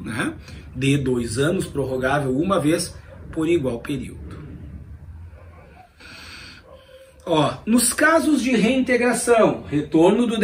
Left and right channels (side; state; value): both; identical; correlation 1.00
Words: né? De 2 anos, prorrogável uma vez por igual período. Ó, nos casos de reintegração, retorno do